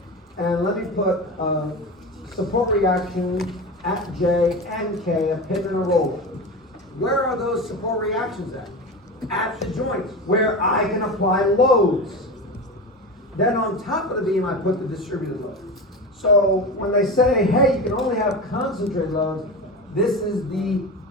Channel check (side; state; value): both; normal; correlation 0.25